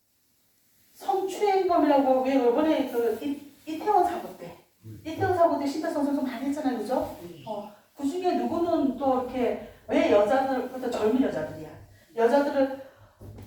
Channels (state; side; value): identical; both; correlation 1.00